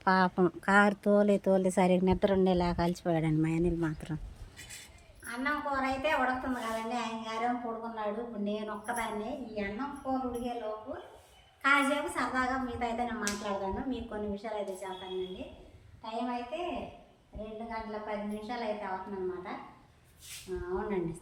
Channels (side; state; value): both; identical; correlation 1.00